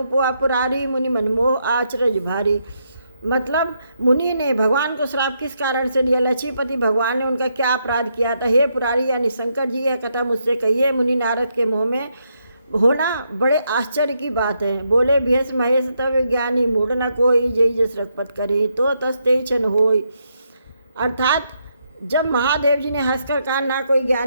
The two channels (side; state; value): both; inverted; correlation -0.78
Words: पुआ पुरारी मुनि मनमोह आचरज भारी। मतलब मुनि ने भगवान को श्राप किस कारण से दिया, लक्ष्मीपति भगवान ने उनका क्या अपराध किया था। हे पुरारी यानी शंकर जी, यह कथा मुझसे कहिए। मुनि नारद के मुँह में होना बड़े आश्चर्य की बात है। बोले भेष महेश तब ज्ञानी मूढ़ न कोई, जय जस रघुपत करे तो तस्ते छन होय। अर्थात जब महादेव जी ने हंसकर कहा ना कोई